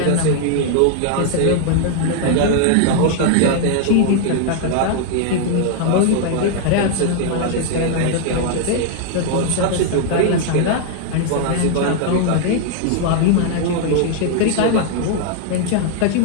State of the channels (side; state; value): both; different; correlation 0.00